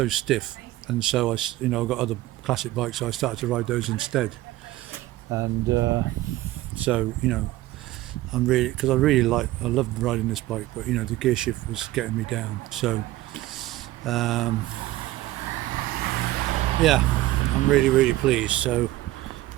stiff, and so I, you know, I got other classic bikes, so I started to ride those instead, and so, you know, I'm really, because I loved riding this bike, but you know, the gear shift was getting me down. So yeah, I'm really, really pleased. So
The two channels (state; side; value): quieter; left; 16.4 dB